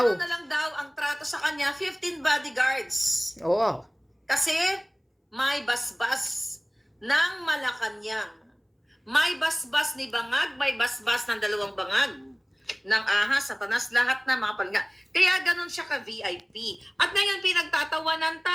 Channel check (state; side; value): identical; both; correlation 1.00